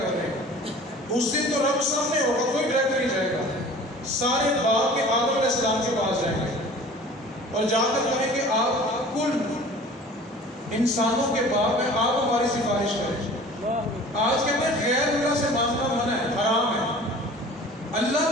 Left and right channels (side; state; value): both; normal; correlation 0.44